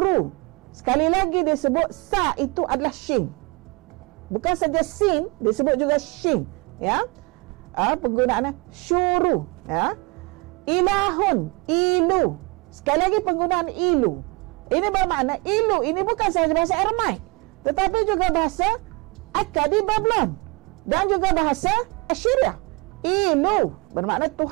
Sekali lagi dia sebut sa itu adalah shin. Bukan saja sin, disebut juga shin. Ya, penggunaannya syuru. Ya, ilahun, ilu. Sekali lagi penggunaan ilu. Ini bermakna ilu ini bukan sahaja bahasa Aramaik, tetapi juga bahasa Akkadi Babylon dan juga bahasa Assyria. Ilu bermakna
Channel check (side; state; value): left; quieter; 27.4 dB